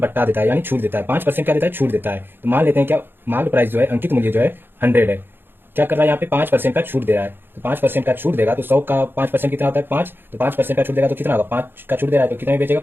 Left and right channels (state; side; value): late; left; 0.10 ms